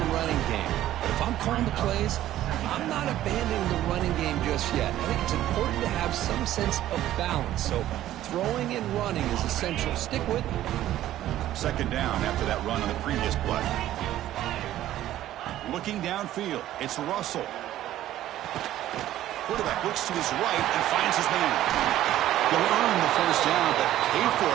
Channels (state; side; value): quieter; left; 13.4 dB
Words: running game. But if I'm calling the plays, I'm not abandoning the running game just yet. I think it's important to have some sense of balance. So throwing and running is essential. Stick with it. Second down after that run on the previous play. Looking downfield, it's Russell. Quarterback looks to his right and finds his man. You'll earn the first down, but pay for